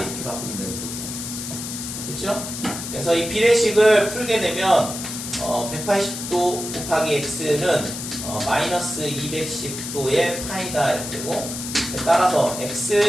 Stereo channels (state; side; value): noise; left; hiss, 7 dB below the sound